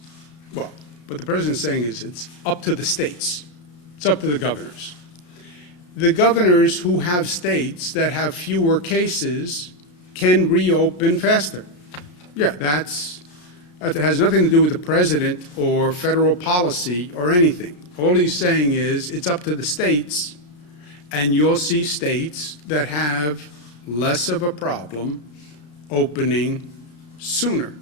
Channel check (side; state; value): right; late; 33 ms